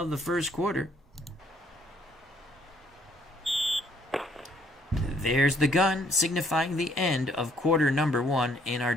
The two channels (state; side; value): normal; both; correlation 0.65